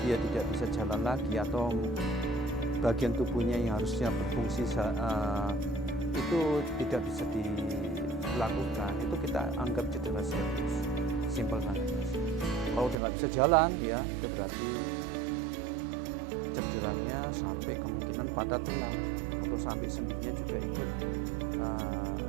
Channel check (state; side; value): drops out; left; at 13.0 s